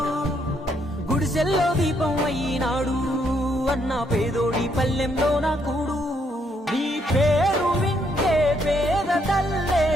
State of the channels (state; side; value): normal; both; correlation 0.73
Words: గుడిసెల్లో దీపం అయినాడు అన్న పేదోడి పల్లెంలో నా కూడు నీ పేరు వింటే పేద తల్లే